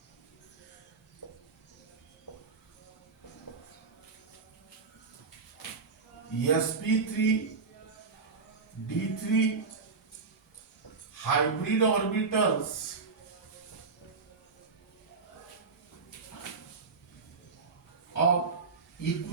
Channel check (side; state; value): left; quieter; 4.6 dB